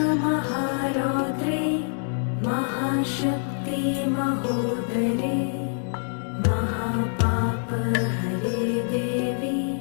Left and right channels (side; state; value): right; silent; digital silence